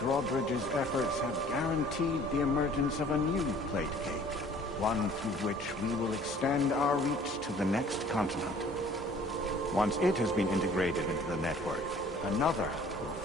efforts have guaranteed the emergence of a new plate cake. One through which we will extend our reach to the next continent. Once it has been integrated into the network, another will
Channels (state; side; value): normal; both; correlation 0.53